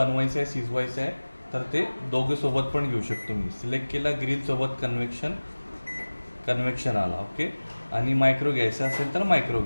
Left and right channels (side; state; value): both; inverted; correlation -1.00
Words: आहे, शिजवायचं आहे, तर ते दोघे सोबत पण घेऊ शकतो मी. सिलेक्ट केला, ग्रिलसोबत कन्व्हेक्शन आला. ओके, आणि मायक्रो घ्यायचा असेल तर मायक्रो